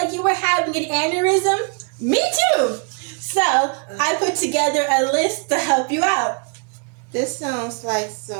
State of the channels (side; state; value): left; quieter; 37.1 dB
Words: you were having an aneurysm. Me too. So, I put together a list to help you out. This sounds like